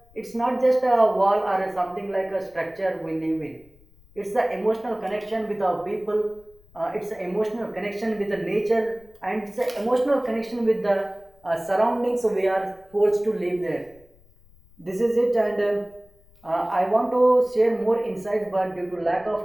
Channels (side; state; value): left; noise; rumble, 28 dB below the sound